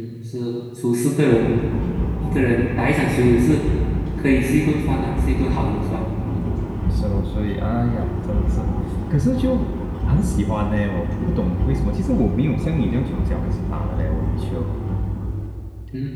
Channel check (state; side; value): identical; both; correlation 1.00